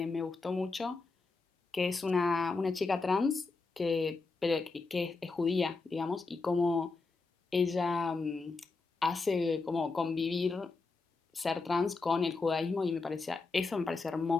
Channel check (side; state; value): right; quieter; 3.9 dB